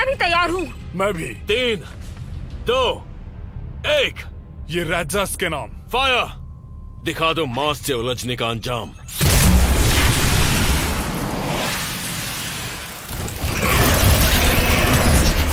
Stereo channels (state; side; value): identical; both; correlation 1.00